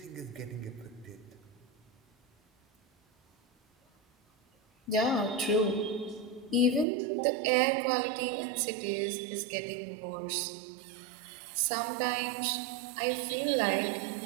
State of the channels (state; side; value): drops out; left; at 6.9 s